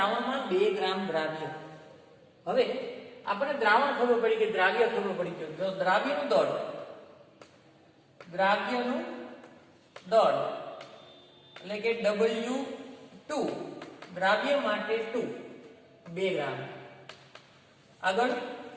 2 ગ્રામ દ્રાવ્ય. હવે આપણે દ્રાવણ ખબર પડી કે દ્રાવ્ય ખબર પડી ગયું. જો દ્રાવ્યનું દળ એટલે કે W2 દ્રાવ્ય માટે 2 2 ગ્રામ. આગળ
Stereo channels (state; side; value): identical; both; correlation 1.00